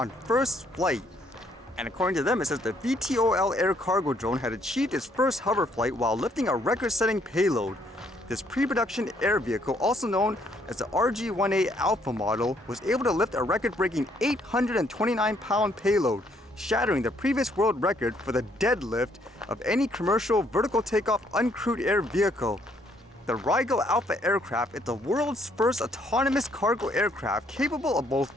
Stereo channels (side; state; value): both; normal; correlation 0.68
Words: first flight. And according to them, it says the VTOL air cargo drone had achieved its first hover flight while lifting a record-setting payload. This pre-production air vehicle, also known as the RH-1-A Alpha model, was able to lift a record-breaking 829-pound payload, shattering the previous world record for the deadlift of any commercial vertical takeoff uncrewed air vehicle. The Rhaegal Alpha aircraft is the world's first autonomous cargo aircraft capable of both